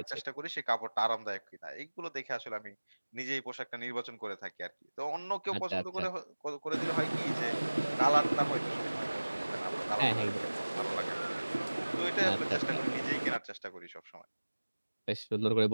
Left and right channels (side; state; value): both; inverted; correlation -1.00